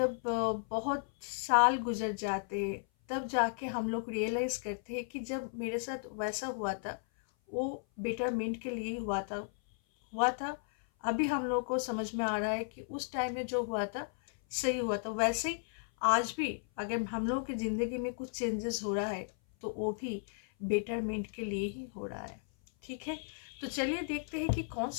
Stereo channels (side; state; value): right; silent; 55 dB below the other